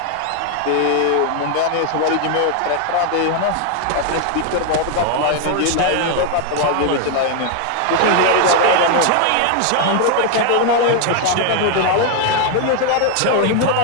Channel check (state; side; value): different; both; correlation 0.00